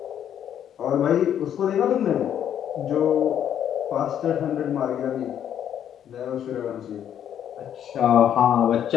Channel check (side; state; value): right; quieter; 9.7 dB